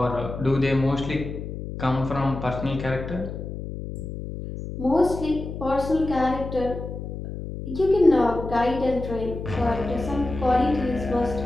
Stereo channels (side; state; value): left; noise; hum, 8 dB below the sound